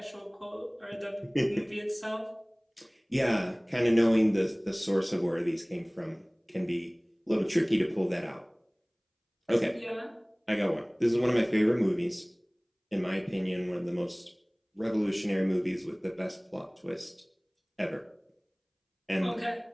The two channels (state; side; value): identical; both; correlation 1.00